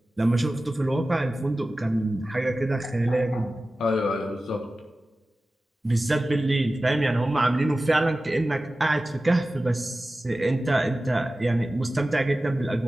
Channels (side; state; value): both; normal; correlation 0.95